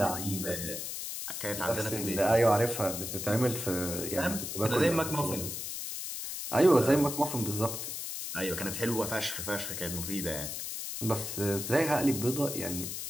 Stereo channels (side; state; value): left; noise; hiss, 5 dB below the sound